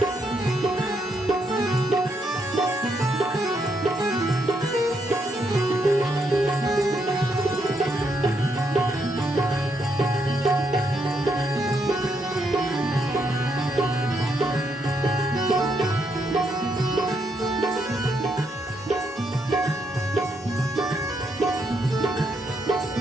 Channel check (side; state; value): both; normal; correlation 0.77